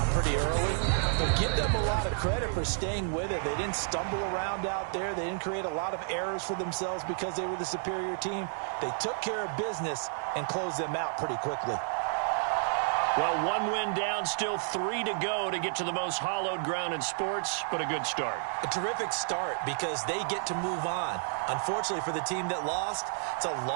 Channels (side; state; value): left; silent; digital silence